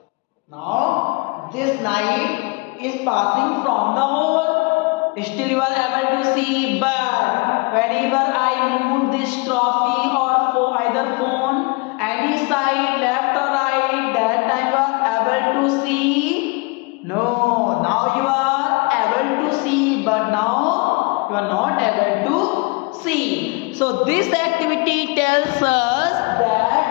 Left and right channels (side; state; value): right; quieter; 28.7 dB